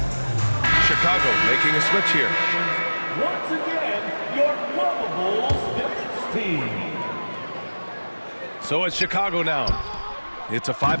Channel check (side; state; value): both; inverted; correlation -1.00